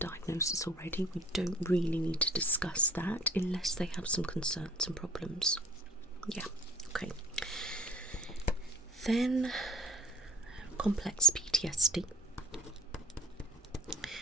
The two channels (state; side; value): normal; both; correlation 0.44